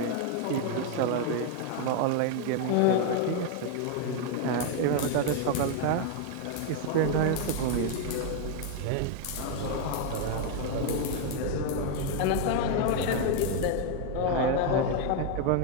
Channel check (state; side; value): different; both; correlation 0.01